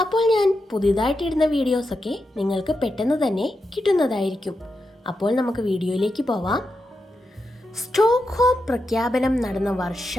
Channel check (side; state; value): both; normal; correlation 0.87